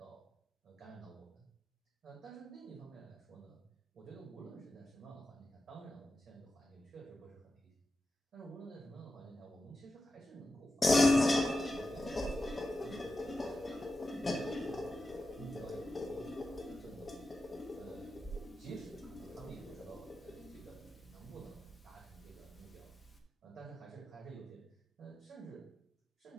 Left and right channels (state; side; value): normal; both; correlation 0.90